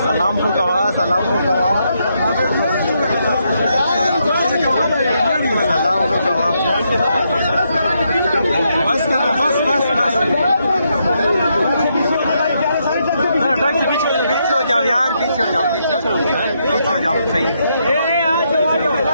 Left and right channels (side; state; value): both; inverted; correlation -0.78